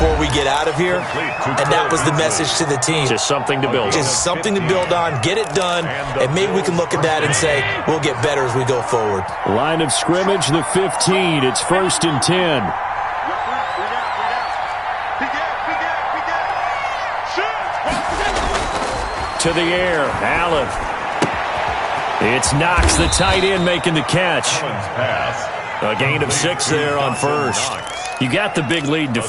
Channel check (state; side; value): identical; both; correlation 1.00